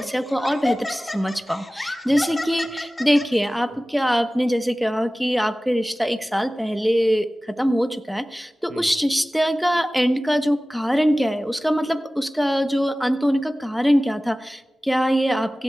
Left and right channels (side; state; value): both; normal; correlation 0.97